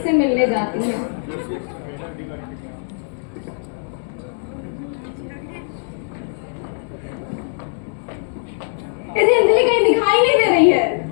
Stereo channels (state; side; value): silent; right; digital silence